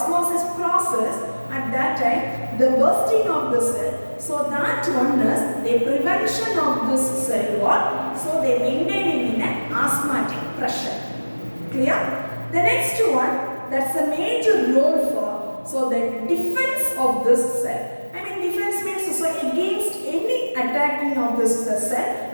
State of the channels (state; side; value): inverted; both; correlation -1.00